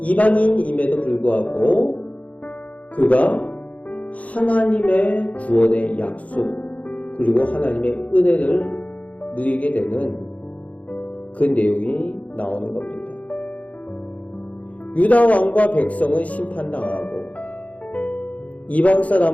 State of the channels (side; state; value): right; late; 0.068 ms